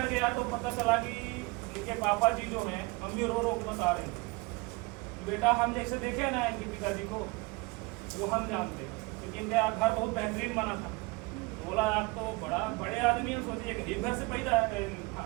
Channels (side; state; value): left; quieter; 25.5 dB